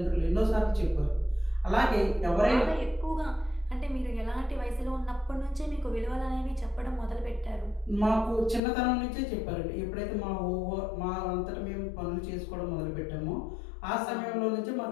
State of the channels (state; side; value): drops out; right; at 8.6 s